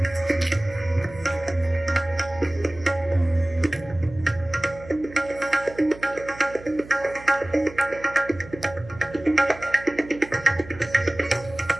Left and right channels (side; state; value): right; noise; hum, 18 dB below the sound